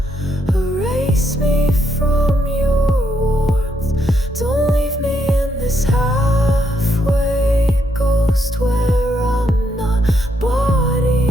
erase me from your warmth. Don't leave me in this halfway ghost where I'm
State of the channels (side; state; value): both; normal; correlation 0.76